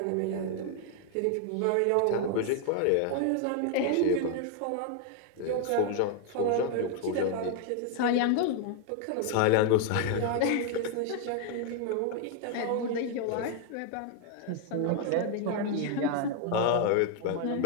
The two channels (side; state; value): both; different; correlation 0.00